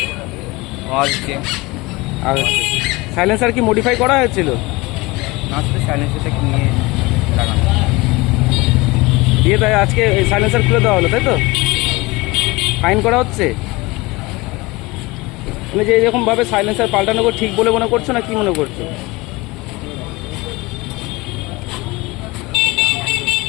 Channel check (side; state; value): right; quieter; 22.9 dB